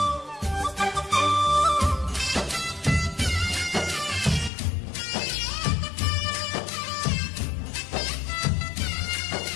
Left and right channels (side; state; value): right; drops out; at 4.5 s